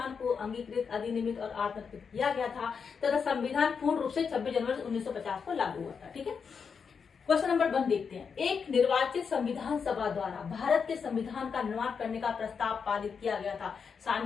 को अंगीकृत, अधिनियमित और आत्मकृत किया गया था तथा संविधान पूर्ण रूप से 26 जनवरी 1950 को लागू हुआ था। ठीक है, क्वेश्चन नंबर 1 देखते हैं। एक निर्वाचित संविधान सभा द्वारा भारत के संविधान का निर्माण करने का प्रस्ताव पारित किया गया था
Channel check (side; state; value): right; quieter; 6.1 dB